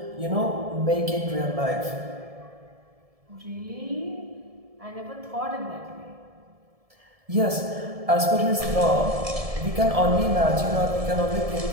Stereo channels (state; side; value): late; left; 1.7 ms